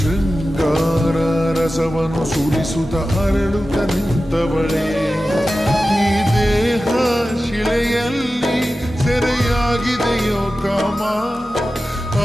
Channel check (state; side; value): normal; both; correlation 0.94